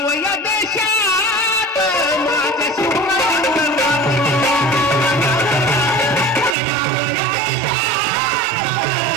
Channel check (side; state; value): left; drops out; at 6.6 s